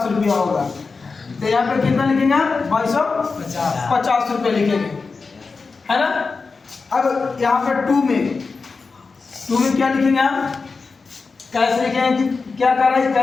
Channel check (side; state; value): right; quieter; 4.5 dB